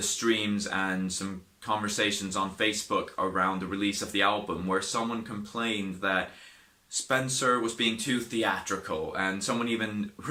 streams and some conversations on Facebook around the release of the album where someone complained that Spencer was being too theatrical, and someone even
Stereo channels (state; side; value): identical; both; correlation 1.00